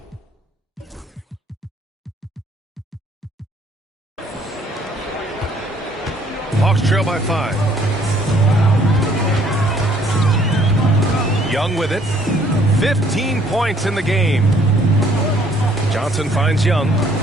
Hawks trail by 5. Young with it. 15 points in the game. Johnson finds Young.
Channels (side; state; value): both; normal; correlation 0.62